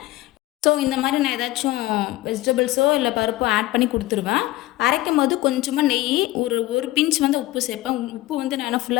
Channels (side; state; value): right; quieter; 17.4 dB